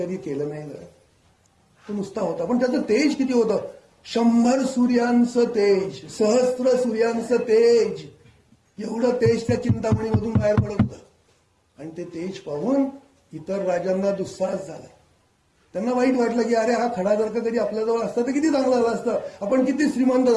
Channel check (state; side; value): identical; both; correlation 1.00